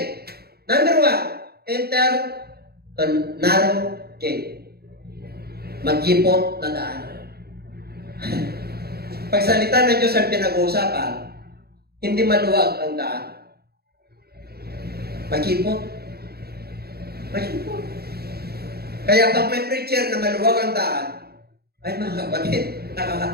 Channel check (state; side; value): late; left; 0.46 ms